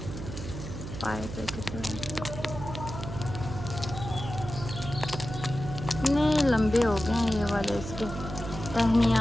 पाइप इतने लंबे हो गए हैं ये वाले इसके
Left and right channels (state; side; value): noise; right; hum, 8 dB below the sound